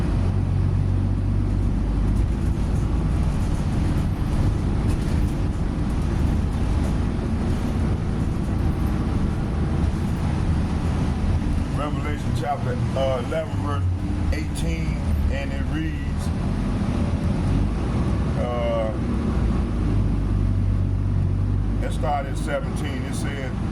Revelation chapter 11 verse 18, and it reads, let's start at 17. It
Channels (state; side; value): identical; both; correlation 1.00